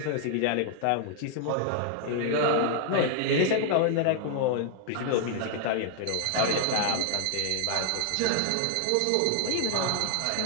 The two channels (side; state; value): both; different; correlation 0.00